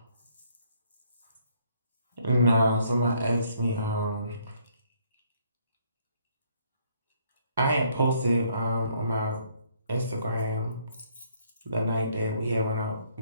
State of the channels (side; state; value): both; inverted; correlation -0.66